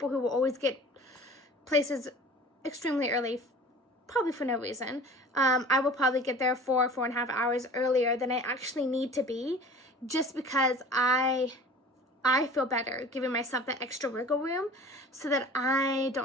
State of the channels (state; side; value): normal; both; correlation 0.43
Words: who will always get places extremely early, probably for no reason, I will probably get there 4.5 hours earlier than I actually need to be, just because I feel better giving myself that extra wiggle room so that I